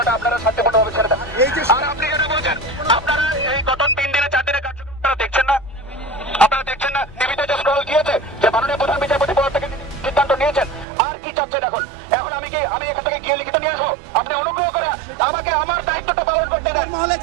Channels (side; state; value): left; drops out; at 10.9 s